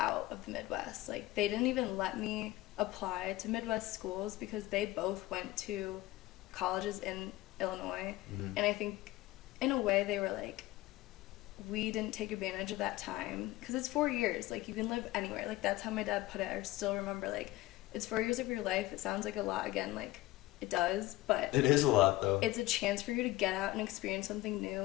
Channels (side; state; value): right; quieter; 17.8 dB